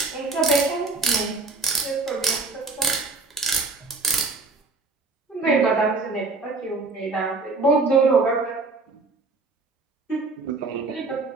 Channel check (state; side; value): quieter; left; 3.7 dB